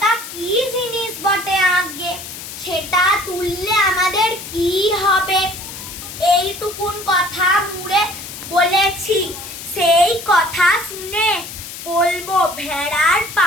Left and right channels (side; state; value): left; noise; hiss, 11 dB below the sound